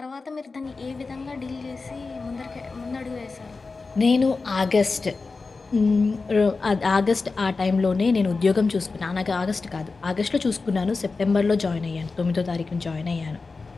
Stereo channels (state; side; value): quieter; right; 4.1 dB